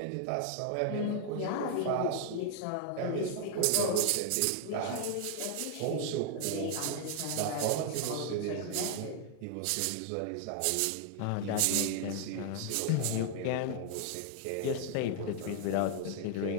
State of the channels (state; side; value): different; both; correlation 0.00